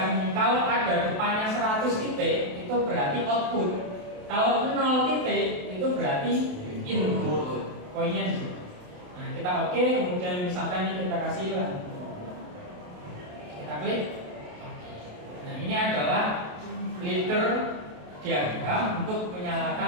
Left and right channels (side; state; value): left; late; 28 ms